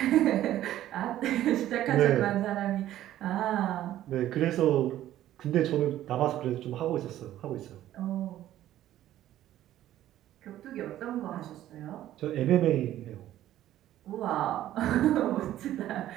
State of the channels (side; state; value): left; quieter; 13.1 dB